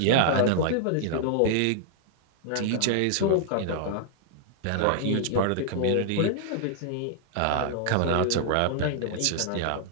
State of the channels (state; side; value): different; both; correlation -0.01